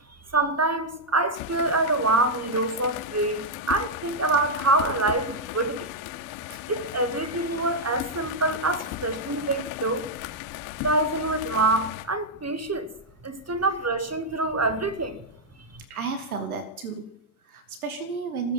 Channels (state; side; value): normal; both; correlation -0.03